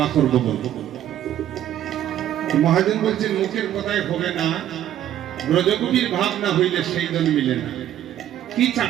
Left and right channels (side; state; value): left; quieter; 11.7 dB